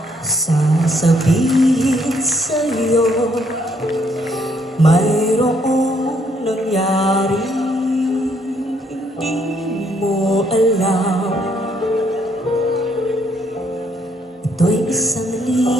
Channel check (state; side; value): normal; both; correlation 0.70